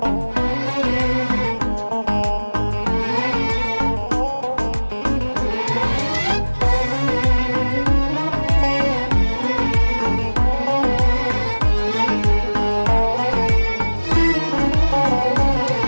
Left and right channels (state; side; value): inverted; both; correlation -1.00